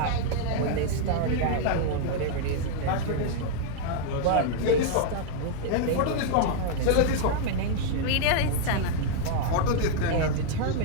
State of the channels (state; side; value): different; both; correlation 0.00